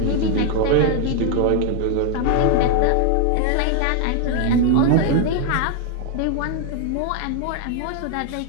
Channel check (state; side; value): different; both; correlation 0.01